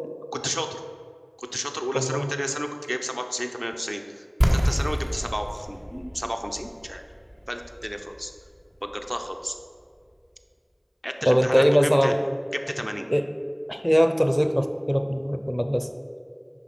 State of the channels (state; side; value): identical; both; correlation 1.00